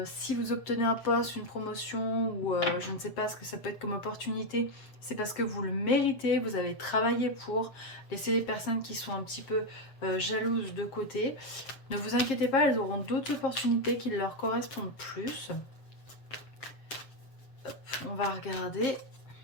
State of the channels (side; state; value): right; late; 7.4 ms